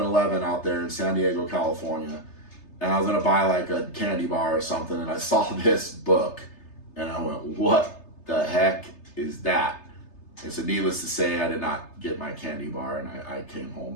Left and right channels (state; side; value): late; right; 3.3 ms